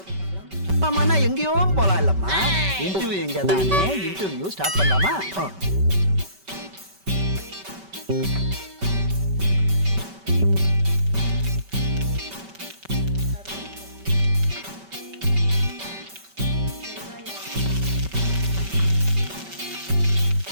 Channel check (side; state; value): left; late; 5.2 ms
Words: பார்க்கலாம். அம்மாண்ணா எங்கேயோ போலாம் இல்லம்மா. இன்டர்வியூ எங்க தானே? இன்டர்வியூ ஸ்டார்ட் பண்ணலாமா?